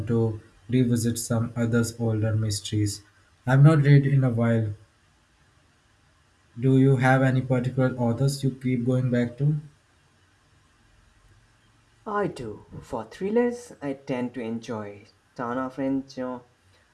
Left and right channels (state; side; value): identical; both; correlation 1.00